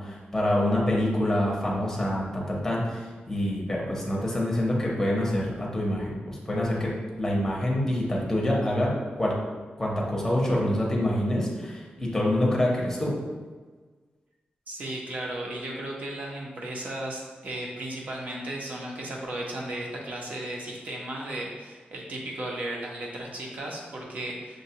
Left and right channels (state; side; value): normal; both; correlation 0.88